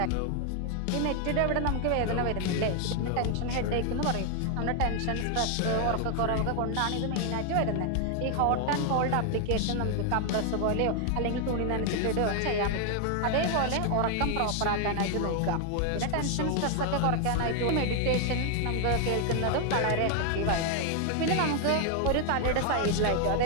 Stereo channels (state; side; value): different; both; correlation 0.00